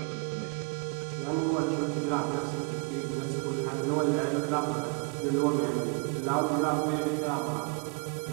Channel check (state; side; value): quieter; left; 31.9 dB